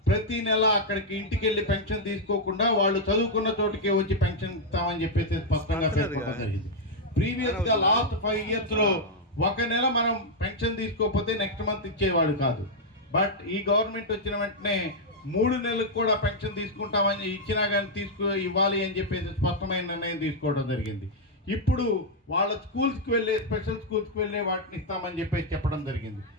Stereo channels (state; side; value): normal; both; correlation -0.02